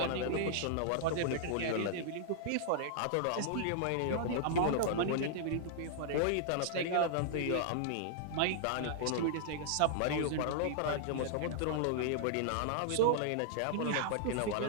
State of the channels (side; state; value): both; different; correlation -0.01